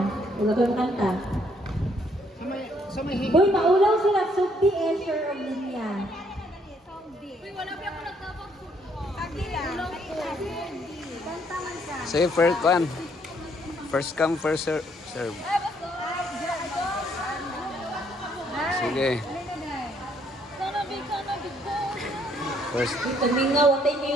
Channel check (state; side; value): normal; both; correlation 0.68